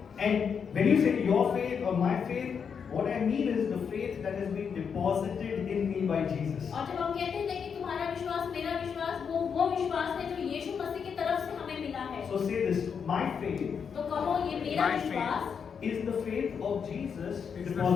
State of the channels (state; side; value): quieter; right; 6.7 dB